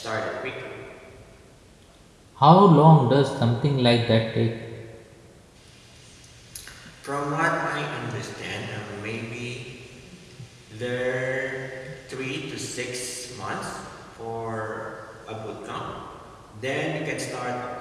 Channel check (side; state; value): both; identical; correlation 1.00